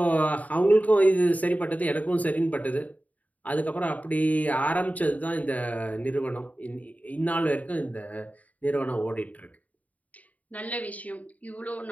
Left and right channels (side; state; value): right; late; 0.072 ms